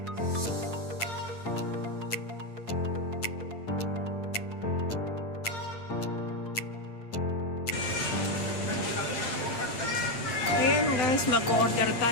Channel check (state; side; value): late; right; 8.8 ms